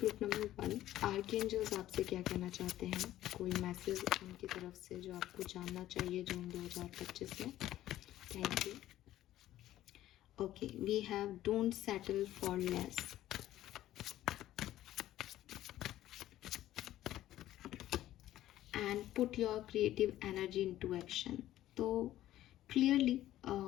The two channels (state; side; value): quieter; right; 13.8 dB